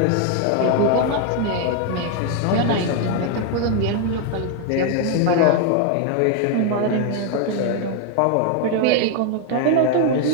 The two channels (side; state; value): both; different; correlation 0.00